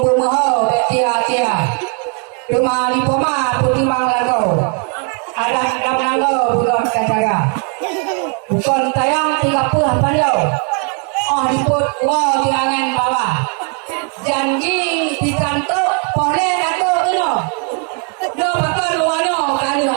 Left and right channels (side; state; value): left; quieter; 39.9 dB